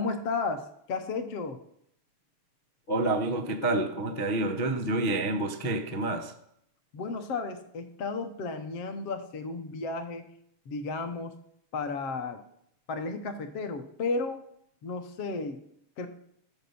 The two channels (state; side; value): late; right; 6.4 ms